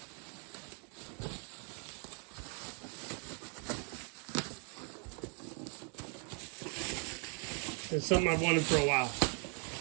is something I've wanted for a while.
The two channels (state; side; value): quieter; left; 39.3 dB